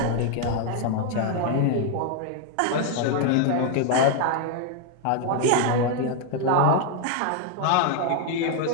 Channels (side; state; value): both; different; correlation 0.00